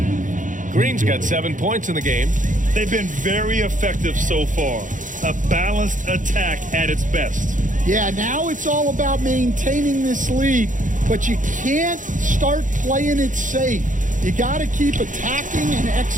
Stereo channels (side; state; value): left; late; 0.37 ms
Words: Green's got 7 points in the game. They've been very effective so far. A balanced attack at its best. Yeah, now it's all about maintaining this lead, but you can't start playing it safe. You got to keep attacking and